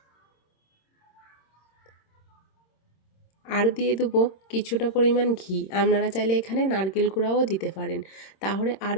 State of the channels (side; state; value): right; late; 26 ms